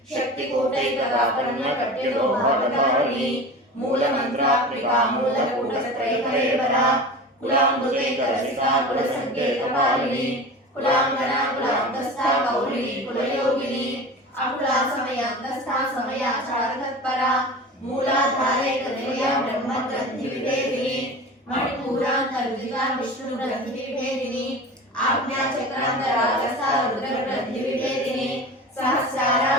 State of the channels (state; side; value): normal; both; correlation 0.33